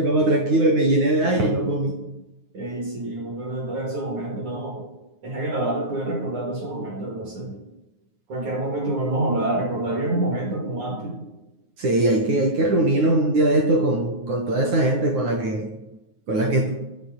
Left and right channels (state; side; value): late; left; 9.6 ms